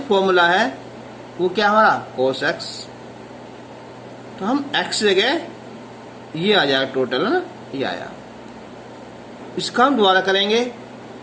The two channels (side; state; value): both; identical; correlation 1.00